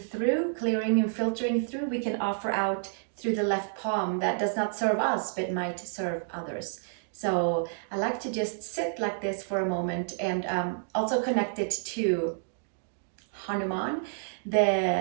through, clearing and filtering through, we can offer out through the left palm that does not serve us but might serve others. So I like to just sit like this for a moment, and also connect it to Hanuman,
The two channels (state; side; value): silent; left; digital silence